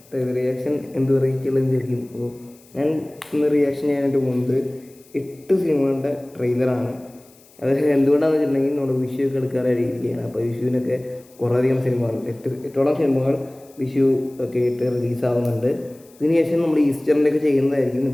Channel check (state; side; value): noise; left; hiss, 28 dB below the sound